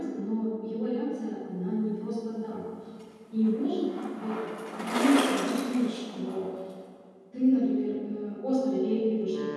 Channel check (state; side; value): identical; both; correlation 1.00